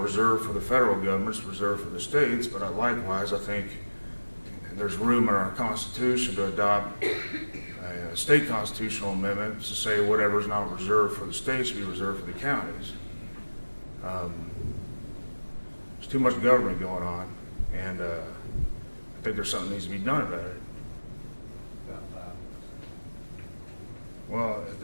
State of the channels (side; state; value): both; inverted; correlation -1.00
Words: for the federal government is reserved for the states, but likewise, I think there's room in our Constitution to adopt a state constitutional amendment to say whatever's not reserved for the states should be reserved for the counties. There's too much government going on, and I think there's something that needs to be done about it. Well,